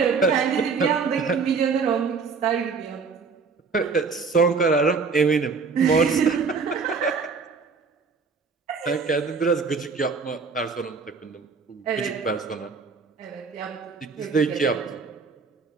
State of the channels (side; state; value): left; quieter; 5.0 dB